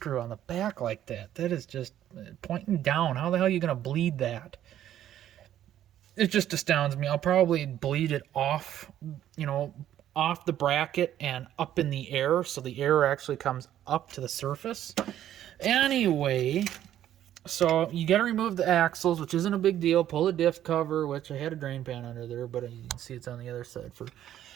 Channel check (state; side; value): quieter; left; 11.6 dB